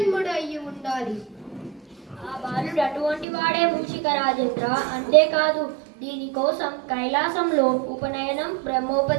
అయి ఉండాలి. ఆ బాలుడు అటువంటి వాడే మూషిక రాజేంద్ర. అంతేకాదు, దీనికోసం కైలాసంలో ఉపనయనం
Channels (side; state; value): left; drops out; at 3.2 s